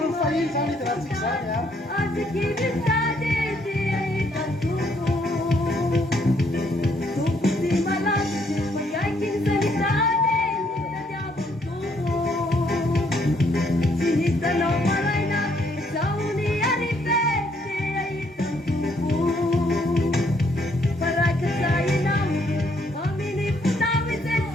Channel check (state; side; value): normal; both; correlation 0.69